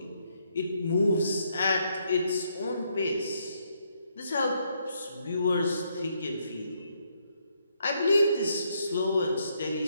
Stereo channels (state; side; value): inverted; both; correlation -0.74